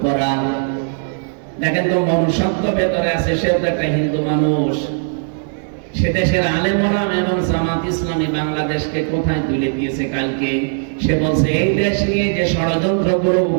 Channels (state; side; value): silent; left; 66 dB below the other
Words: করা। দেখেন তো মনুষ্যত্ব ভেতরে আছে, সেও তো একটা হিন্দু মানুষ। সে দেশের আলেম ওলামা এবং জামাত ইসলামী বাংলাদেশকে কোথায় তুলে দিয়েছে কালকে। সে বলছে এই দেশ নিয়ে যে ষড়যন্ত্রগুলো